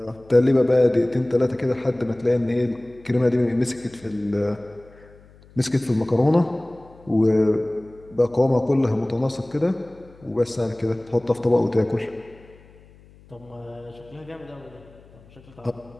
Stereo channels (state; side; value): noise; left; hum, 25 dB below the sound